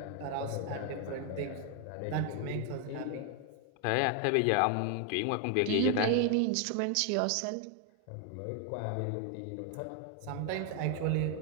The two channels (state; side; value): different; both; correlation 0.00